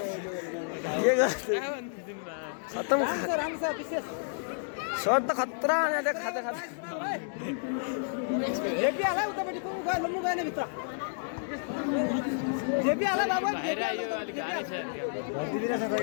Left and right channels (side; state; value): right; silent; digital silence